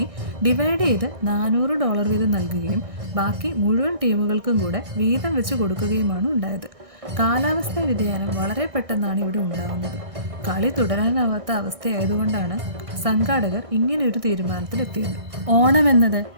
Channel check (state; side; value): late; left; 1.6 ms